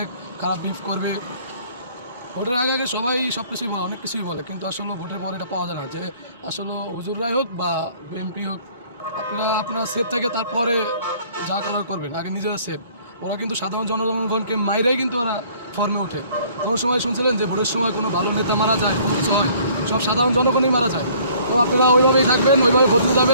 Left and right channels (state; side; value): inverted; both; correlation -0.57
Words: খারাপ বিহেভ করবে। ভোটের আগে আগে সবাই সব কিছুই বলে, অনেক কিছুই বলে, কিন্তু আসলে ভোটের পরে এটা পাওয়া যায় না যে আসলে হুজুররাই হোক বা বিএনপি হোক, আপনারা সেফ থাকে তারপরে যা করার করবেন, আগে নিজেরা সেফ। ওরা কিন্তু সাধারণ জনগণকে মাইরাই কিন্তু ওরা ফর্মে ওঠে। কোনো সময় শুনছিলেন যে ভোটের সময় কোনো ভালো নেতা মারা যায়, কোনো কিছু হয়, সব সাধারণ জনগণই মারা যায়। তো আপনারা ওইভাবেই থাকবেন, ওইভাবে ভোট দিতে